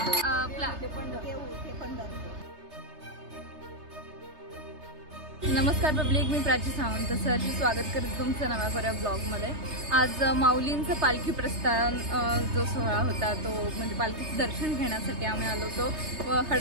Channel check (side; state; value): left; late; 3.3 ms